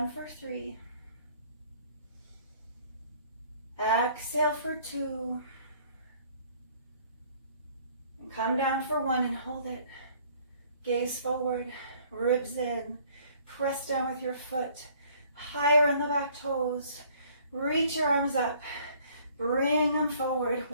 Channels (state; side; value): inverted; both; correlation -0.58